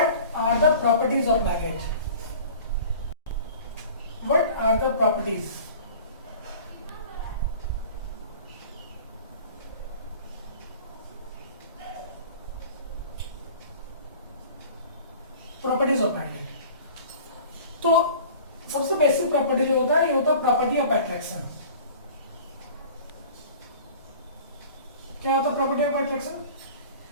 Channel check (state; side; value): inverted; both; correlation -0.44